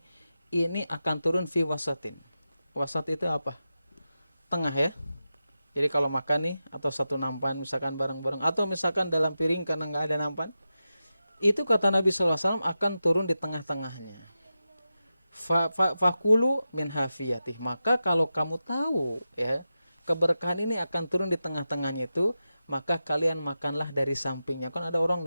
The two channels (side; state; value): both; inverted; correlation -0.91